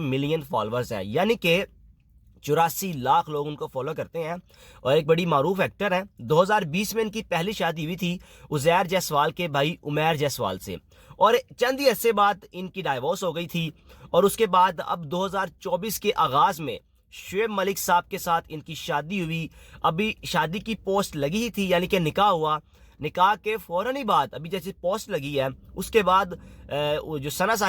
ملین فالورز ہیں، یعنی کہ 84 لاکھ لوگ ان کو فالو کرتے ہیں، اور ایک بڑی معروف ایکٹر ہیں۔ 2020 میں ان کی پہلی شادی ہوئی تھی عزیر جیسوال کے بھائی عمیر جیسوال سے، اور چند ہی عرصے بعد ان کی ڈائیورس ہو گئی تھی، اور اس کے بعد اب 2024 کے آغاز میں شعیب ملک صاحب کے ساتھ ان کی شادی ہوئی۔ ابھی شادی کی پوسٹ لگی ہی تھی، یعنی کہ نکاح ہوا، نکاح کے فوراً ہی بعد ابھی جیسے پوسٹ لگی ہے اس کے بعد جو ثنا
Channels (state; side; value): identical; both; correlation 1.00